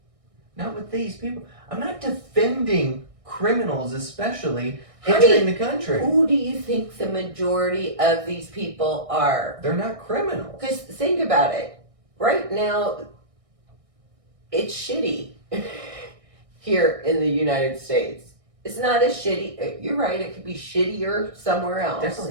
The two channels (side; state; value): left; late; 1.6 ms